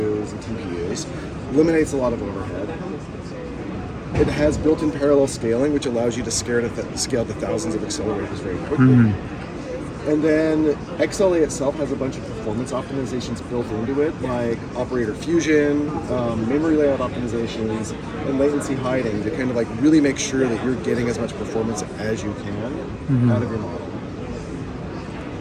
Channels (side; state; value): both; identical; correlation 1.00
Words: and TPUs. Eliminates a lot of overhead. It has built-in parallel scaling, which allows you to scale to thousands of accelerators very quickly. And then XLA itself has a bunch of performance optimizations built into it, like operator fusion, memory layout optimizations, and latency hiding to kind of really make sure that you're getting as much performance as you can out of your model.